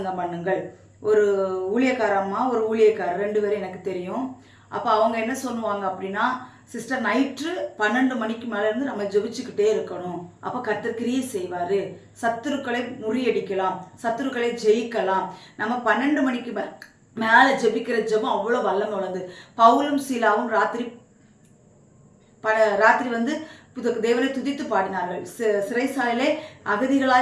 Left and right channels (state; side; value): identical; both; correlation 1.00